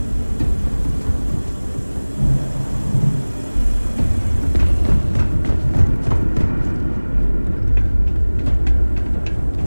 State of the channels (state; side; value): inverted; both; correlation -1.00